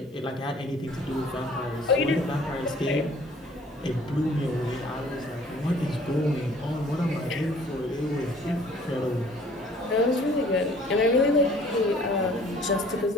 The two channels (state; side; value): normal; both; correlation 0.54